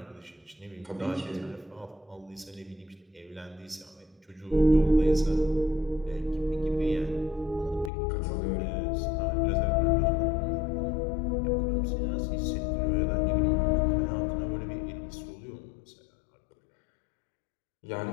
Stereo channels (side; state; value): right; drops out; at 7.9 s